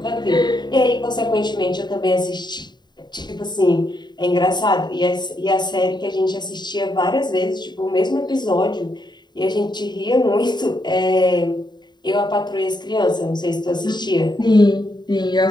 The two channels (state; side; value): late; right; 0.21 ms